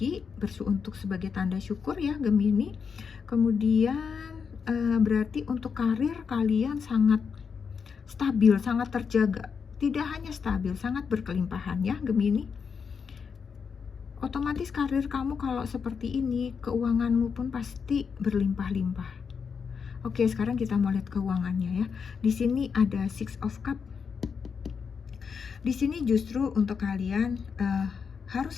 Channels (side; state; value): right; quieter; 6.1 dB